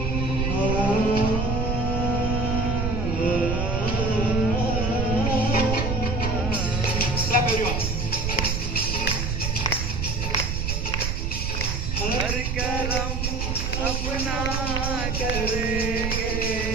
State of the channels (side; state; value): right; noise; rumble, 1 dB below the sound